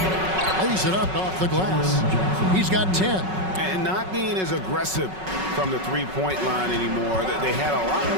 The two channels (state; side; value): late; left; 5.4 ms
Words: Lays it up off the glass. He's got 10. And not being as aggressive from the three-point line anymore. They had a lot